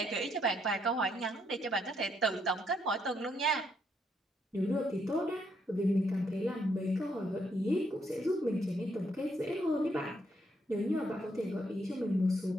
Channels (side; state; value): both; normal; correlation 0.74